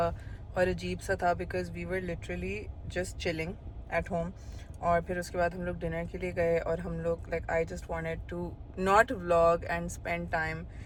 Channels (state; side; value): identical; both; correlation 1.00